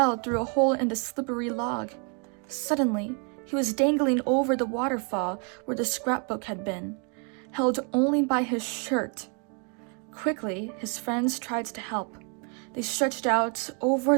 through a hole in the slippery log. Suddenly, he was dangling over the waterfall where the scrapbook had been, held only by his shirt. Quickly, his friends tried to help. They stretched out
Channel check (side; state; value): left; quieter; 37.2 dB